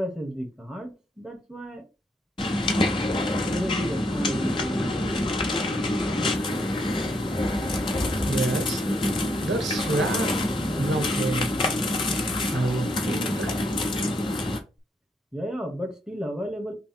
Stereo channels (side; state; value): both; normal; correlation 0.75